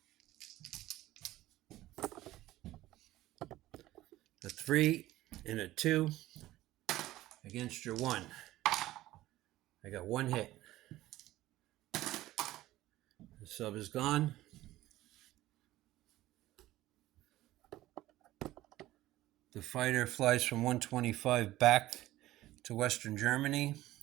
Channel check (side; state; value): left; quieter; 15.9 dB